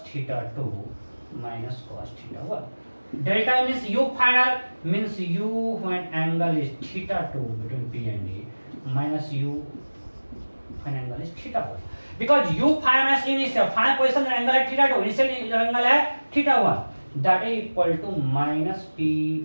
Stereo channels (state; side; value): inverted; both; correlation -1.00